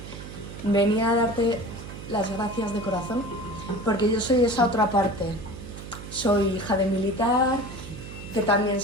Venía a darte las gracias de corazón, porque yo soy esa otra parte. Soy hija de militar, que también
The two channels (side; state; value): right; noise; hum, 12 dB below the sound